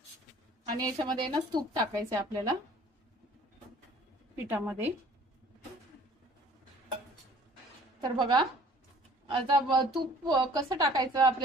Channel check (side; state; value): both; normal; correlation 0.52